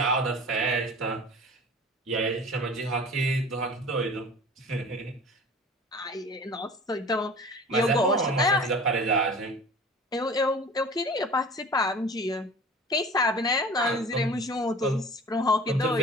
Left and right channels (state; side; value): normal; both; correlation 0.41